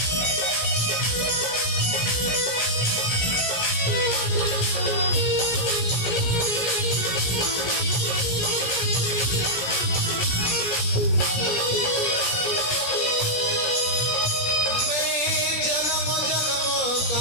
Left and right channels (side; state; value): right; late; 17 ms